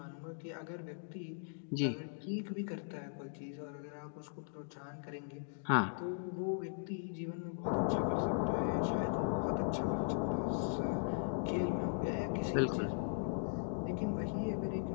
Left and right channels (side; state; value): right; silent; digital silence